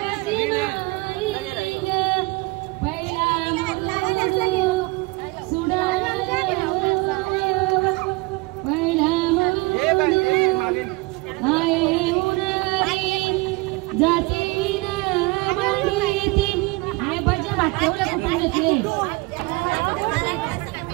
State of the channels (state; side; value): quieter; left; 24.5 dB